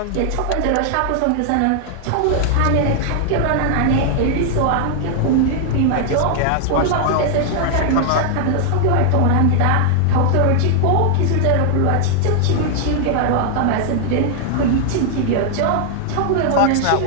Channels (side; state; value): both; different; correlation 0.00